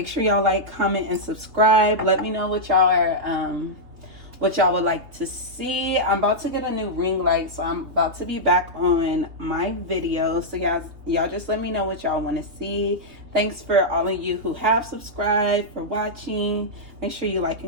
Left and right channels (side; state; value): left; late; 3.4 ms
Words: sure y'all like, comment, and subscribe. Let me know what y'all would like to see. I'm about to get a new ring light, so I'm about to be back on my videos. So y'all just let me know what y'all want to see. Thanks for all of you who have subscribed, for watching. Make sure you like